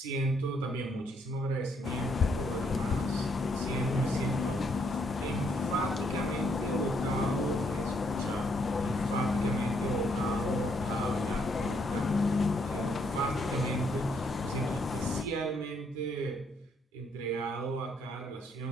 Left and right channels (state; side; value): normal; both; correlation 0.72